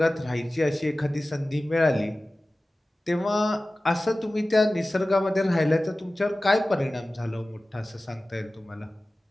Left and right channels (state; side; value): normal; both; correlation 0.97